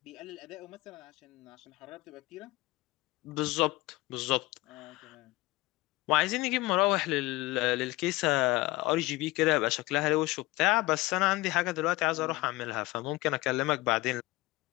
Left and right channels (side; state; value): right; quieter; 20.0 dB